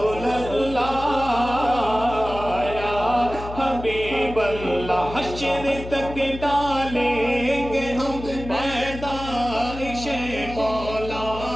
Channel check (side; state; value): left; noise; hum, 11 dB below the sound